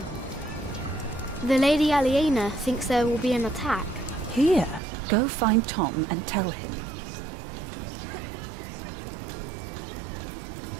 The Lady Aliena thinks there will be an attack. Here, go find Tom and tell him.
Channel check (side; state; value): left; drops out; at 4.8 s